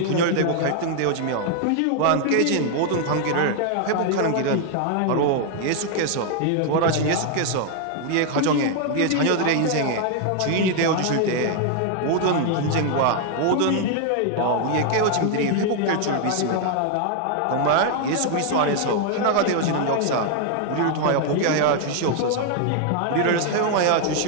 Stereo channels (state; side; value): different; both; correlation 0.00